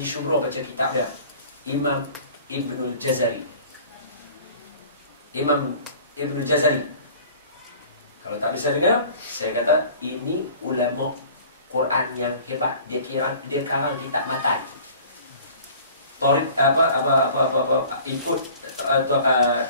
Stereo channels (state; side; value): inverted; both; correlation -0.47